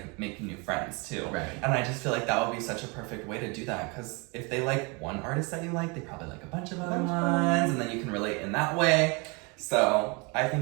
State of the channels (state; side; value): quieter; left; 30.1 dB